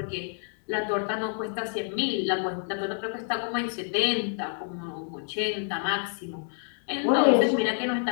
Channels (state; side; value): silent; right; 59 dB below the other